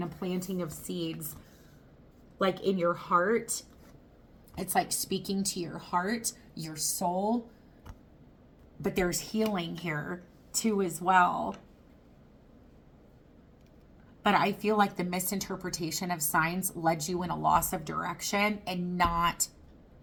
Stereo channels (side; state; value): both; identical; correlation 1.00